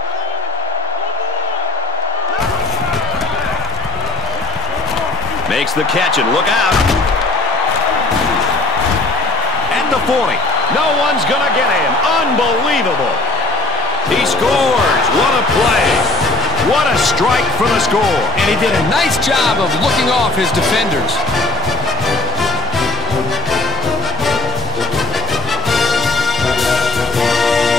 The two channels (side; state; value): right; quieter; 3.1 dB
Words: Makes the catch and look out. The 40. No one's going to get him. Unbelievable. He scores. What a play. What a strike for the score. And he did a nice job of looking off his defenders.